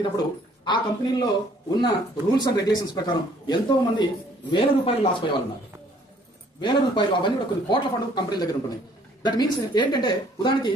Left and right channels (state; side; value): normal; both; correlation 0.60